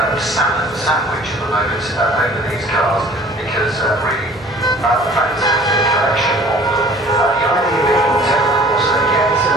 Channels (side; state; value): both; normal; correlation 0.50